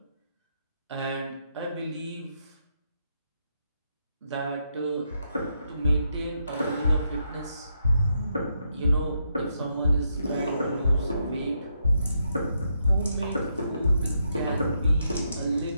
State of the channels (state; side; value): inverted; both; correlation -0.79